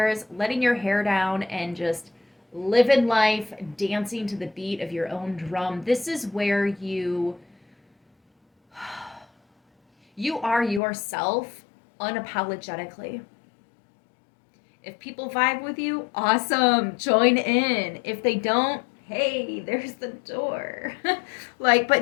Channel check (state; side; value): drops out; right; at 10.8 s